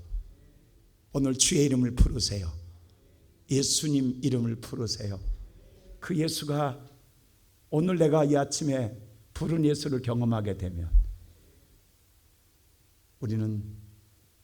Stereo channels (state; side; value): identical; both; correlation 1.00